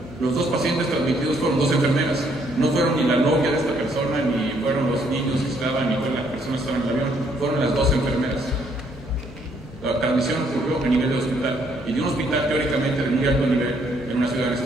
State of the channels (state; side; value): normal; both; correlation 0.68